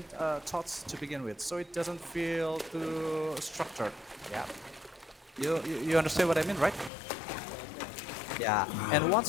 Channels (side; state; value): right; drops out; at 6.9 s